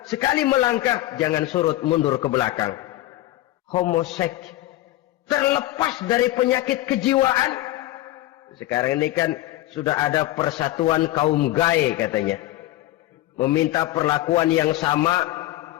Sekali melangkah, jangan surut mundur ke belakang. Homoseks, terlepas dari penyakit kejiwaan. Sekarang ini kan sudah ada persatuan kaum gay katanya. Meminta perlakuan yang sama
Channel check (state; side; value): quieter; right; 15.8 dB